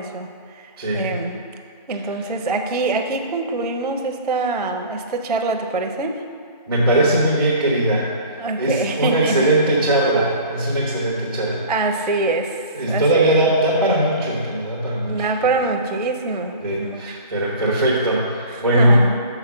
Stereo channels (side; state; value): both; inverted; correlation -0.40